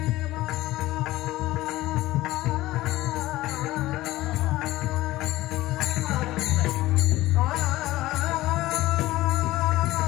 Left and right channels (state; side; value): quieter; right; 17.1 dB